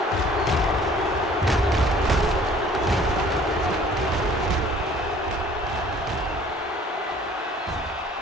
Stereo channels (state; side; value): normal; both; correlation 0.53